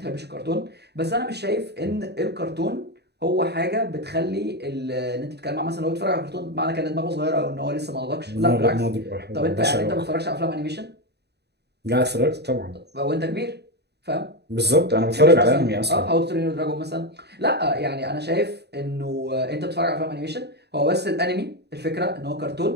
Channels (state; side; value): late; left; 0.48 ms